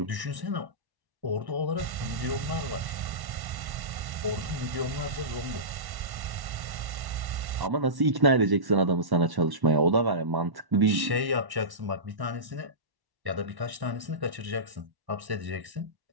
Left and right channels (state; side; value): late; left; 1.1 ms